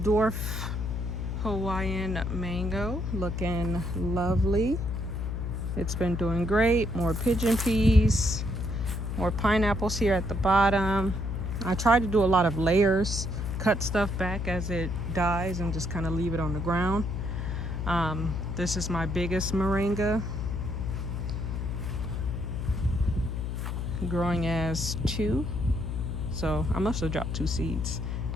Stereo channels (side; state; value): left; noise; hum, 3 dB below the sound